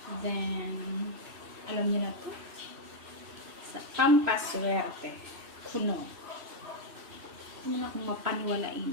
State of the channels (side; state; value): left; late; 3.0 ms